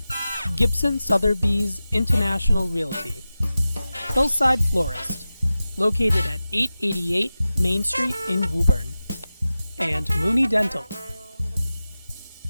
Gibson Sotheby's International Realty, Hillside Florist, located at 888 Main Street in Woburn, and Mooney Dental,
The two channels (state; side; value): inverted; both; correlation -0.95